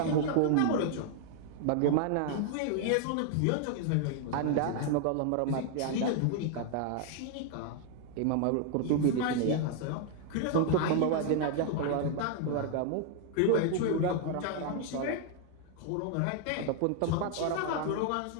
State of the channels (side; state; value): both; different; correlation 0.00